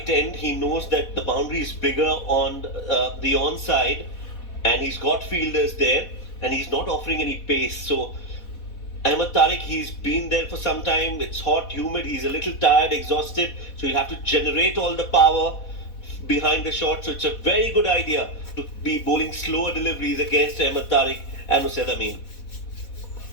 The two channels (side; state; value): right; late; 4.1 ms